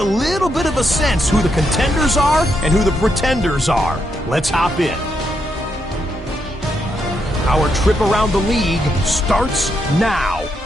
a little bit of a sense who the contenders are and who the pretenders are. Let's hop in. Our trip around the league starts now.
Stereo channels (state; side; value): normal; both; correlation 0.80